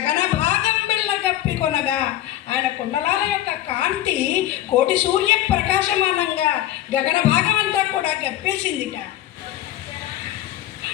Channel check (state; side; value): quieter; right; 13.5 dB